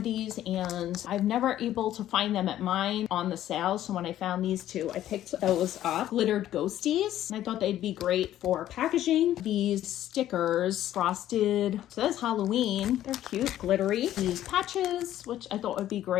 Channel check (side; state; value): right; quieter; 12.6 dB